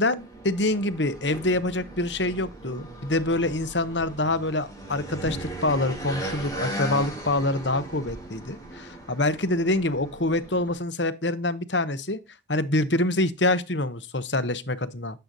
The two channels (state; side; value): normal; both; correlation 0.14